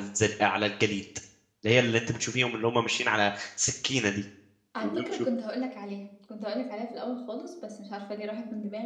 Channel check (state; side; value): identical; both; correlation 1.00